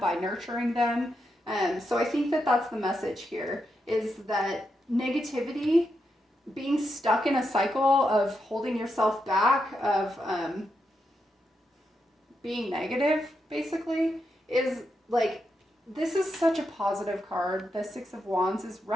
nurturing them. So I think that that's the message here, is that negativity, being stuck in a cycle of holding yourself back, of being negative, basically, is like, this is such a positive card. The Six of Wands is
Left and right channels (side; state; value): both; normal; correlation 0.84